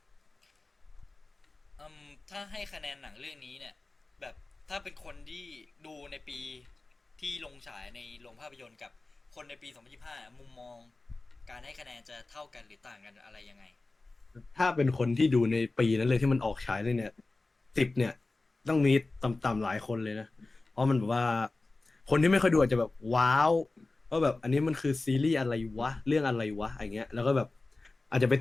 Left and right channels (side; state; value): right; quieter; 3.3 dB